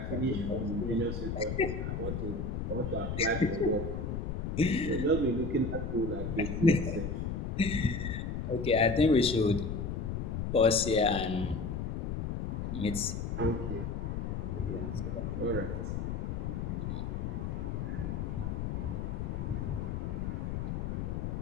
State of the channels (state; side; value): noise; left; rumble, 2 dB below the sound